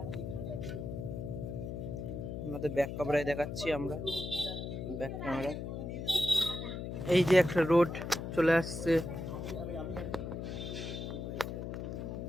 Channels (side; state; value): left; noise; hum, 5 dB below the sound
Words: আপনাদের ব্যাক ক্যামেরায় দেখাচ্ছি আমরা, ব্যাক ক্যামেরা। এই যে একটা রোড চলে আসছে,